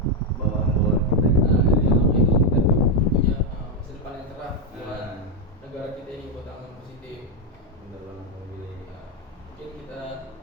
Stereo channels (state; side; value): normal; both; correlation 0.03